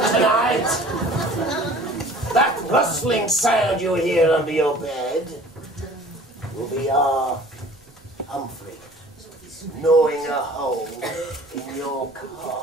tonight. That rustling sound you hear under your bed will be our Humphrey gnawing a hole in your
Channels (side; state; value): right; noise; rumble, 30 dB below the sound